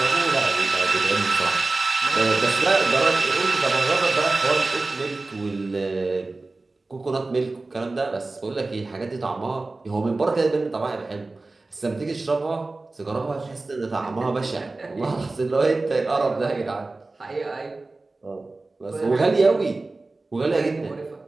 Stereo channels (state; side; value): quieter; left; 3.3 dB